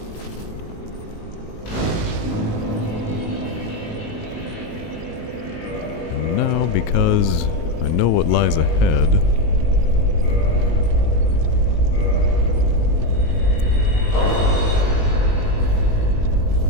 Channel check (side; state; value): right; late; 19 ms